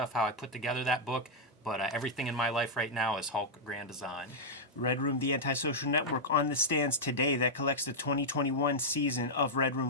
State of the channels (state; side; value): normal; both; correlation -0.05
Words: how I put together that book. But everything in my life right now is Hulk Grand Design. Red Room, the antisocial network, on the stands today that collects the 2021 season of Red